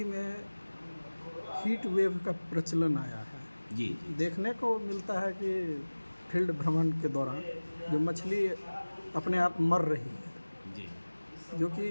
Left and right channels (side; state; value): both; inverted; correlation -1.00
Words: में हीट वेव का प्रचलन आया है। हूँ। जी जी देखने को मिलता है कि फील्ड भ्रमण के दौरान जो मछली अपने आप मर रही है, जी जो कि